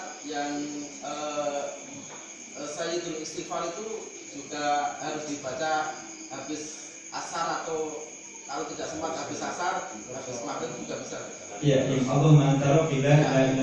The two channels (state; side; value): identical; both; correlation 1.00